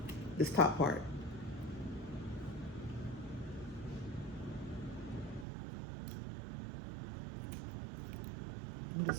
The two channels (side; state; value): left; drops out; at 5.5 s